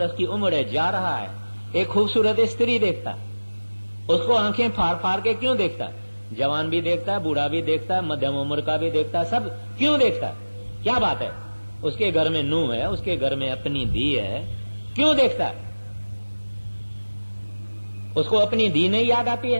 की उम्र है, जा रहा है, एक खूबसूरत स्त्री देखता, उसको आंखें फाड़ फाड़ के क्यों देखता है? जवान भी देखता है, बूढ़ा भी देखता है, मध्यम उम्र का भी देखता है, सब क्यों देखता है? क्या बात है? उसके घर में नूह है, उसके घर में अपनी धी है, क्यों देखता है? उसको अपनी धी नहीं याद आती है?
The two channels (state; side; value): inverted; both; correlation -1.00